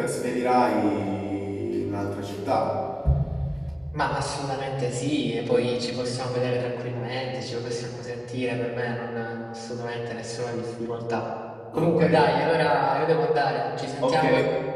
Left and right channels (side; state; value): both; identical; correlation 1.00